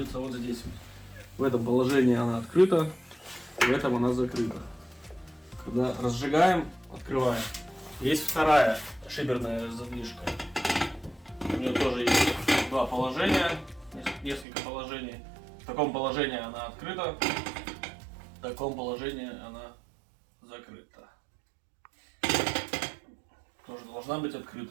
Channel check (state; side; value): drops out; left; at 14.5 s